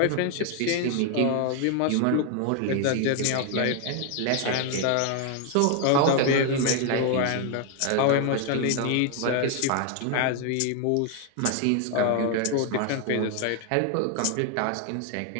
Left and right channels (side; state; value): both; different; correlation 0.00